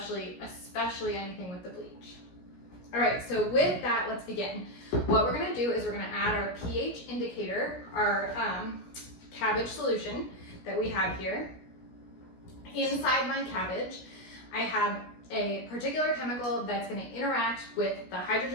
anything with the bleach. All right, so with that, let's begin. What we're gonna do is we're gonna add our pH indicator, our cabbage solution that we have here. Inside my cabbage, I have a particular chemical that's gonna interact with the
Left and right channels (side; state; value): right; late; 17 ms